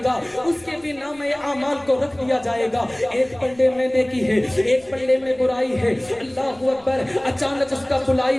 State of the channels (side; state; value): left; noise; rumble, 28 dB below the sound